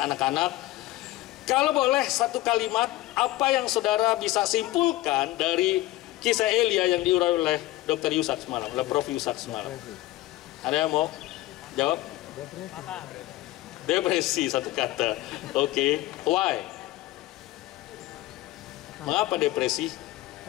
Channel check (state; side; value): quieter; right; 17.1 dB